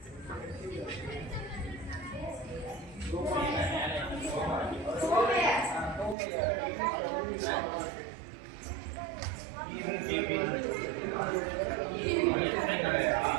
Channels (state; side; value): drops out; left; at 6.2 s